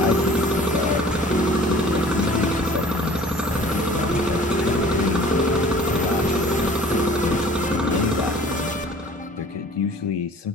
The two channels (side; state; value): both; normal; correlation 0.48